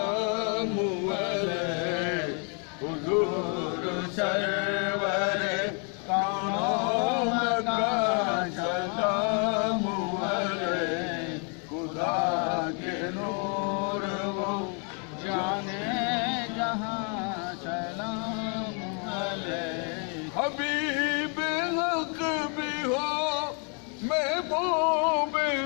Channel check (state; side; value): quieter; right; 39.0 dB